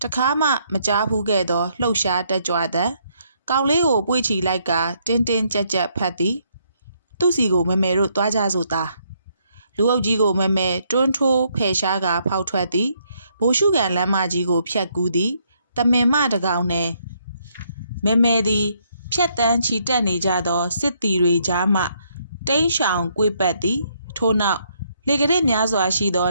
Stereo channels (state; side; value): inverted; both; correlation -0.72